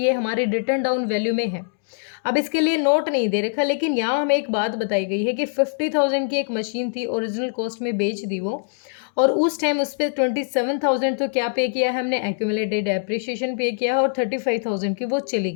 हमारी रिटन डाउन वैल्यू में है। अब इसके लिए नोट नहीं दे रखा, लेकिन यहाँ हमें एक बात बताई गई है कि 50,000 की एक मशीन थी, ओरिजिनल कॉस्ट में बेच दी वो, और उस टाइम उस पर 27,000 तो क्या पे किया है हमने, एक्यूमुलेटेड डेप्रिसिएशन पे किया है, और 35,000 की वो चली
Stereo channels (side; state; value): right; silent; digital silence